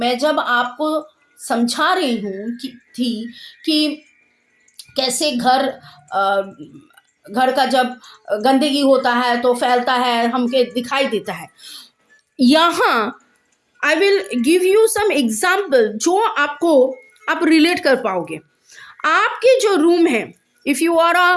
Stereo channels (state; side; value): identical; both; correlation 1.00